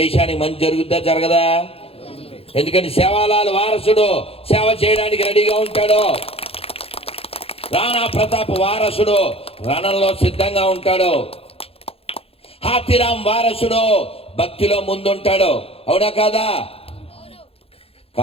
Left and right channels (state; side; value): late; right; 0.28 ms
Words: మంచి జరుగుద్దా జరగదా? ఎందుకని సేవాలాల్ వారసుడు సేవ చేయడానికి రెడీగా ఉంటాడు. రాణా ప్రతాప్ వారసుడు రణంలో సిద్ధంగా ఉంటాడు. హాతీరామ్ వారసుడు భక్తిలో ముందుంటాడు. అవునా కాదా?